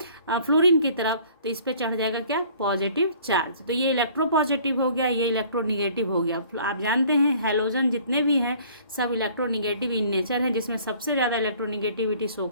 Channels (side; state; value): both; inverted; correlation -0.54